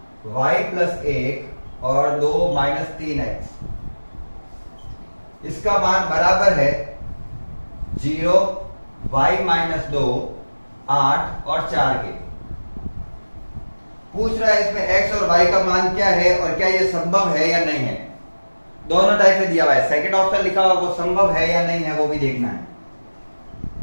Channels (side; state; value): both; inverted; correlation -1.00